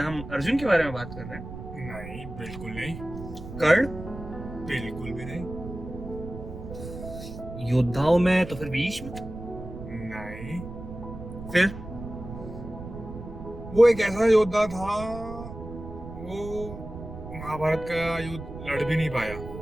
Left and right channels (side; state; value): right; noise; rumble, 11 dB below the sound